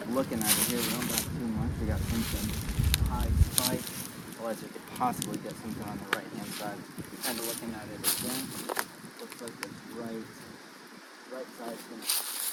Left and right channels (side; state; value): both; identical; correlation 1.00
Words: Looking at it here, we don't got too much. We got something high spike, otherwise we could possibly get something on the right hand side. Kind of looking at it again, looks like this right side is going to